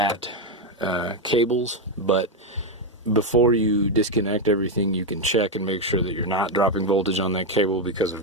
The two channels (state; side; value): normal; both; correlation 0.05